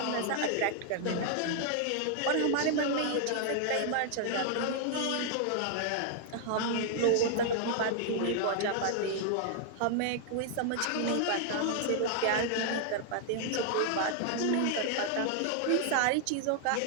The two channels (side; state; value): both; different; correlation 0.00